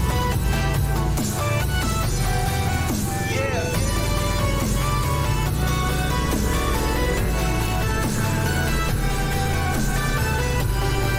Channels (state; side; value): identical; both; correlation 1.00